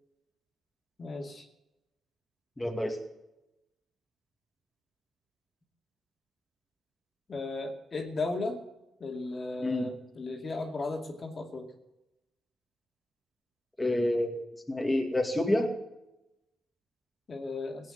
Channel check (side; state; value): both; normal; correlation 0.91